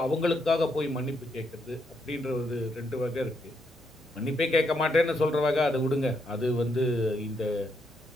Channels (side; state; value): both; normal; correlation 0.78